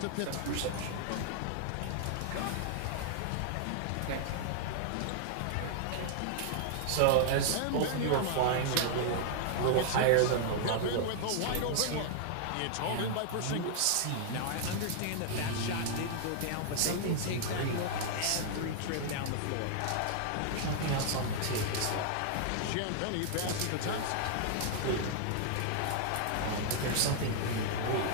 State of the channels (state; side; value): different; both; correlation -0.01